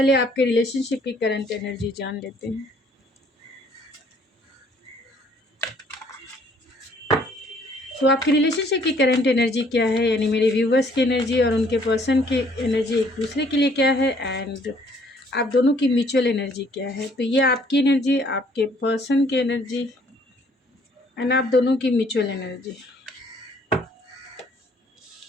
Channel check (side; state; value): both; normal; correlation 0.61